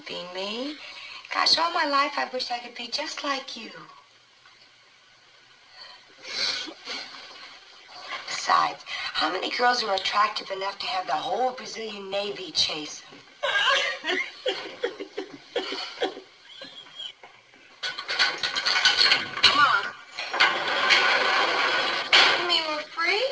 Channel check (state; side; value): identical; both; correlation 1.00